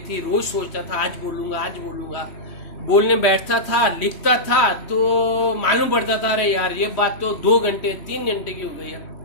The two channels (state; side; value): late; right; 3.1 ms